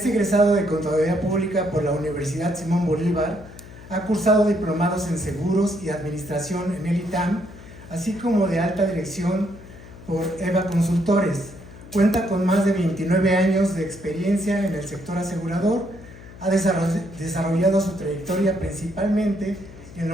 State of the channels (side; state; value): left; noise; hum, 17 dB below the sound